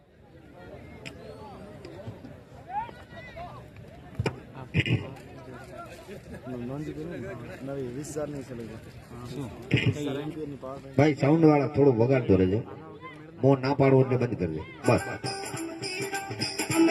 भाई साउंड वाला थोड़ो वगाड़ दो रहे, मोह ना पाड़ो એટલે બંધ કરી દે બસ।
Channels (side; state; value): both; identical; correlation 1.00